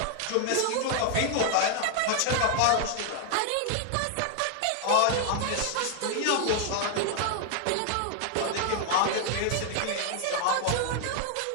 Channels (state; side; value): different; both; correlation 0.00